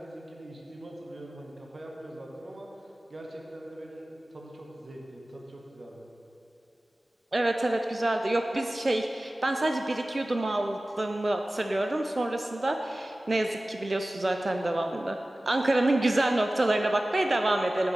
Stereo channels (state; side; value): normal; both; correlation 0.97